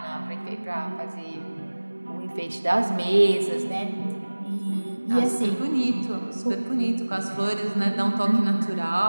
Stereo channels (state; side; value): inverted; both; correlation -1.00